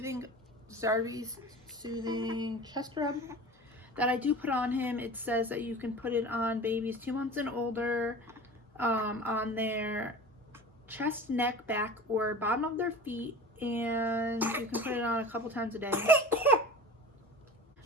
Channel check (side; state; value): both; normal; correlation 0.35